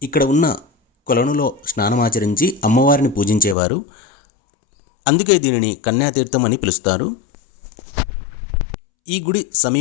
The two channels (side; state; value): right; drops out; at 3.6 s